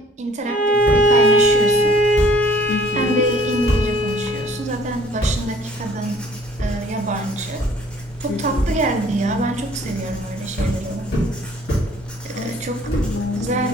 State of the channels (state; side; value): normal; both; correlation 0.56